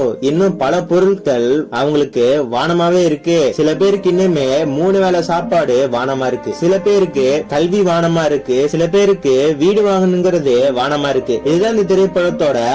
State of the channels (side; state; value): both; identical; correlation 1.00